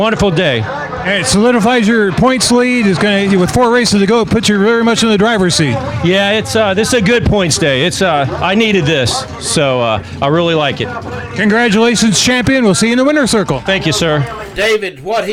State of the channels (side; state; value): both; identical; correlation 1.00